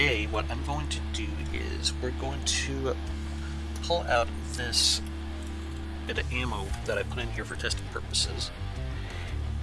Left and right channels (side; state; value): both; identical; correlation 1.00